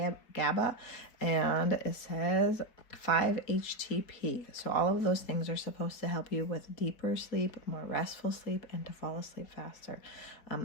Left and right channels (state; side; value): late; right; 4.5 ms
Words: GABA, and it says 5-HTP. So all of those things are supposed to help you with deeper sleep, more restful sleep, and to fall asleep faster.